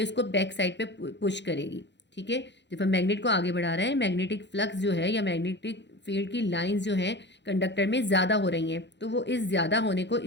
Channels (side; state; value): right; late; 0.52 ms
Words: इसको बैक साइड पे पुश करेगी। ठीक है, जब हम मैग्नेट को आगे बढ़ा रहे हैं मैग्नेटिक फ्लक्स जो है या मैग्नेटिक फील्ड की लाइंस जो हैं कंडक्टर में ज़्यादा हो रही हैं तो वो इस ज़्यादा होने को